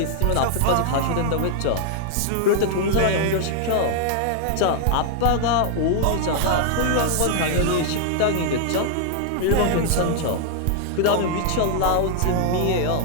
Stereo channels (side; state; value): both; different; correlation 0.00